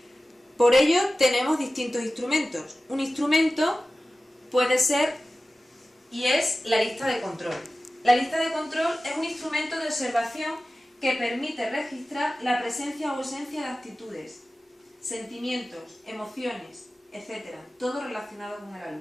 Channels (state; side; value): normal; both; correlation 0.96